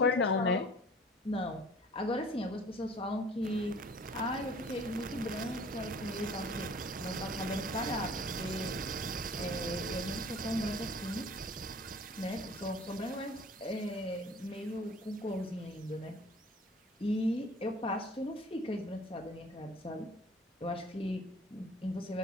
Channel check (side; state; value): both; normal; correlation 0.49